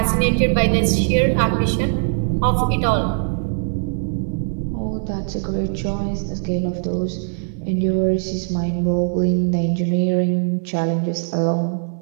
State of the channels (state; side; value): silent; left; digital silence